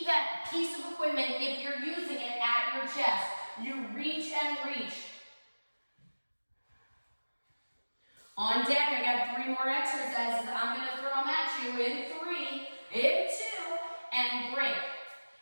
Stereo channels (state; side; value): inverted; both; correlation -1.00